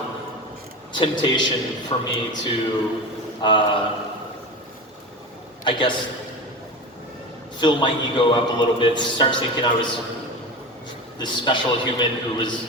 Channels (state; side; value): normal; both; correlation 0.27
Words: temptation for me to, I guess, fill my ego up a little bit, start thinking I was this special human who